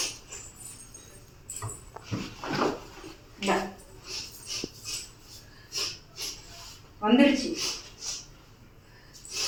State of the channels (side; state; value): both; identical; correlation 1.00